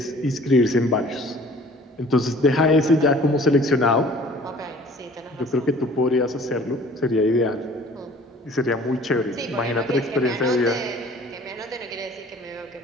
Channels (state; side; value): normal; both; correlation 0.50